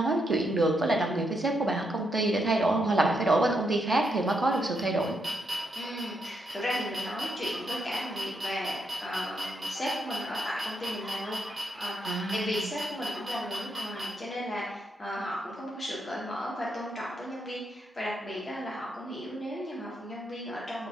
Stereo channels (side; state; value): both; normal; correlation 0.80